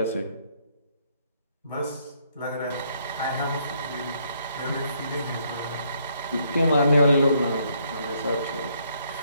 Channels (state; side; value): inverted; both; correlation -0.70